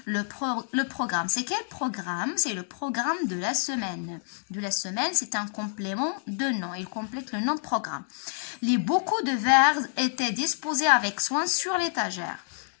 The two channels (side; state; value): right; silent; digital silence